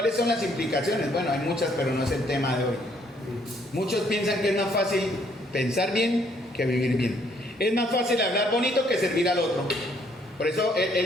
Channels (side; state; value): both; normal; correlation 0.67